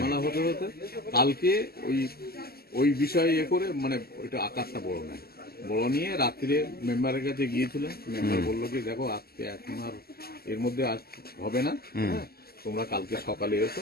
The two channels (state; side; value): late; right; 0.45 ms